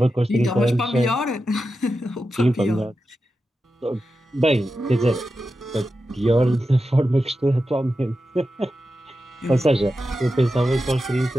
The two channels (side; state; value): both; normal; correlation 0.91